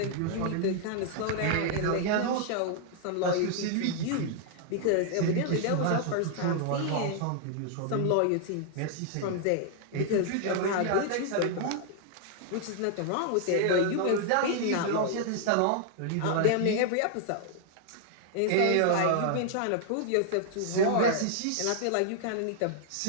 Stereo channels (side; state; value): both; different; correlation -0.01